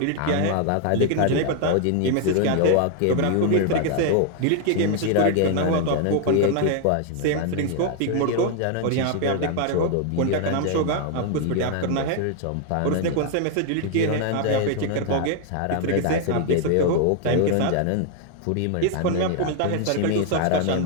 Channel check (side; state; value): both; different; correlation 0.01